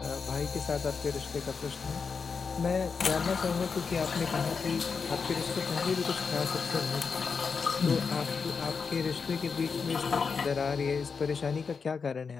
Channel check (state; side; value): quieter; right; 5.4 dB